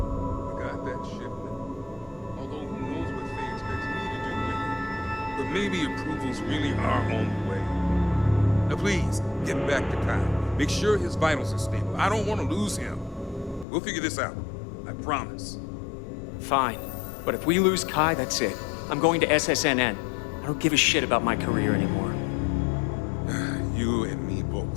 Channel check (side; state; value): right; drops out; at 13.7 s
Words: I got that shipment. Although who knows what Faye expects me to do with it. But maybe approvals really are on the way. Now please, get back to Kyle. Make sure his vitals are stable. I don't want to lose him. We'll figure this out. I promise. Fine. But if we lose Kai, that's it. I'm going to SSNN. I don't give a shit about my career anymore. You and me